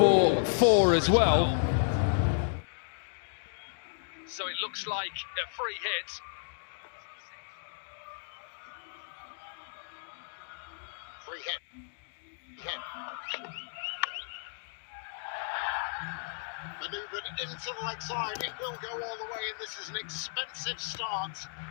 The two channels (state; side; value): silent; right; digital silence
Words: 4 as well. So it looks like a free hit. Free hit. Manoeuvred into the leg side, it will go all the way, and this is an expensive start